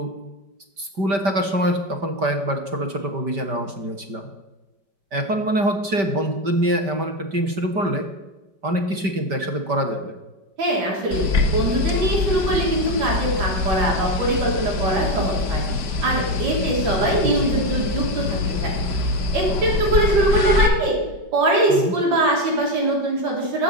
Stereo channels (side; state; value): left; late; 5.1 ms